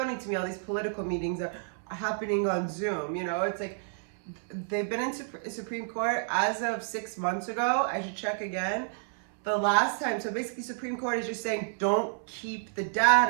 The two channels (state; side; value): silent; left; 58 dB below the other